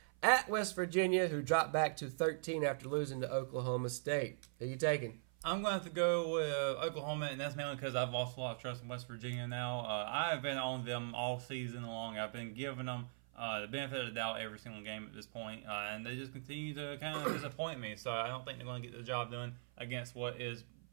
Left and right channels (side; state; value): left; silent; 51 dB below the other